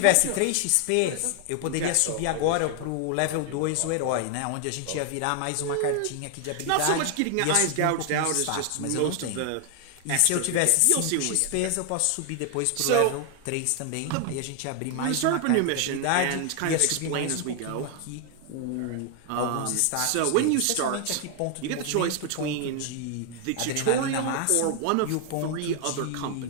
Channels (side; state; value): both; different; correlation 0.00